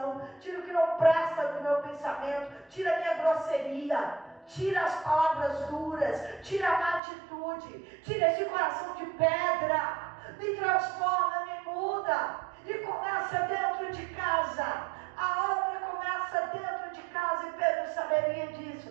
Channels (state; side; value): drops out; left; at 7.0 s